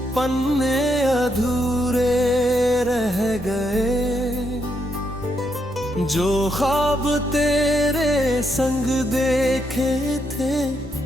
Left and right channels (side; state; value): both; normal; correlation 0.78